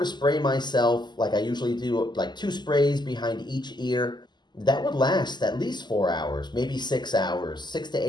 spray myself, like I usually do, like 2 sprays behind each ear, that would last at least 4 hours, maybe 6 hours, 6 to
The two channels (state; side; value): late; right; 0.21 ms